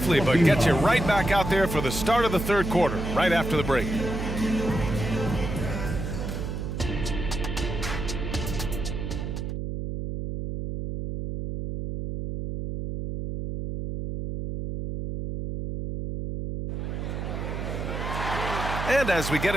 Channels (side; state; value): right; noise; hum, 4 dB below the sound